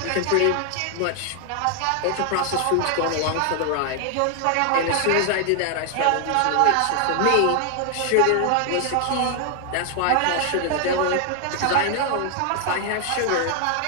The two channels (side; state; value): both; different; correlation 0.00